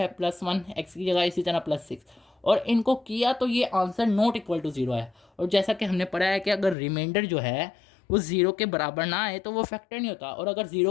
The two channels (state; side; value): drops out; right; at 6.8 s